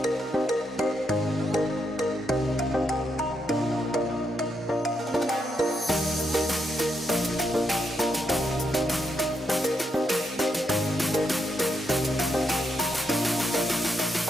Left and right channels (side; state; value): both; normal; correlation 0.80